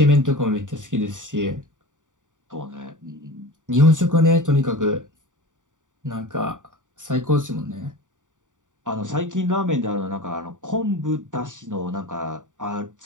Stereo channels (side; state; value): left; late; 0.87 ms